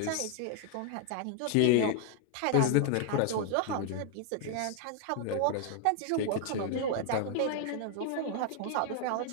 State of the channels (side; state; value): both; different; correlation 0.00